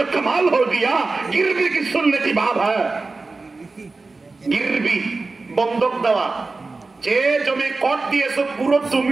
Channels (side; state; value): left; quieter; 3.7 dB